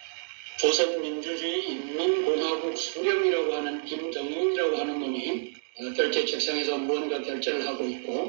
조선민주주의 인민공화국 수령이라고 하는 김정은이라고 하는 놈이 결제 책상에서 무언가 결제를 하고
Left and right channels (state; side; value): silent; left; digital silence